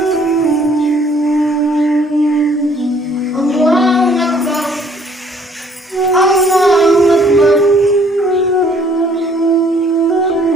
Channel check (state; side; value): normal; both; correlation 0.60